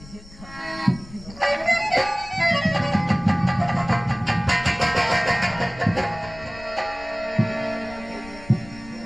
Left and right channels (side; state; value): left; noise; rumble, 19 dB below the sound